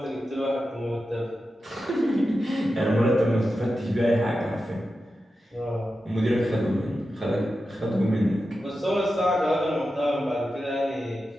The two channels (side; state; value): both; normal; correlation 0.91